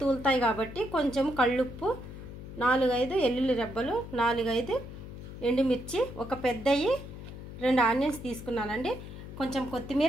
తూలుతాయి కాబట్టి. కొంచెం కళ్ళుప్పు, 4-5 ఎల్లుల్లి రెబ్బలు, 4-5 ఎండుమిర్చి, ఒక పెద్దవి 2 ఆనియన్స్ తీసుకున్నానండి. కొంచెం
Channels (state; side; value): noise; left; hum, 12 dB below the sound